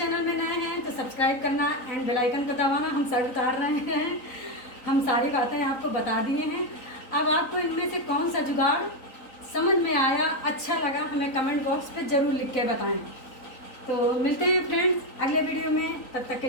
में नए हैं तो सब्सक्राइब करना एंड बेल आइकन को दबाना। हम सर उतार रहे हैं, हम सारी बातें आपको बता दिए हैं। अब आपको इनमें से कौन सा जुगाड़ समझ में आया, अच्छा लगा, हमें कमेंट बॉक्स पे ज़रूर लिख के बताएं। तो मिलते हैं फ्रेंड्स अगले वीडियो में, तब तक के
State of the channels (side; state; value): right; late; 3.9 ms